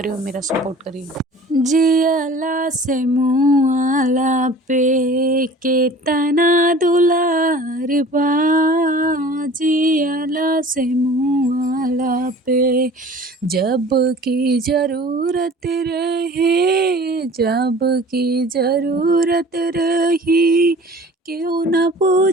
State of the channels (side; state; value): both; normal; correlation 0.45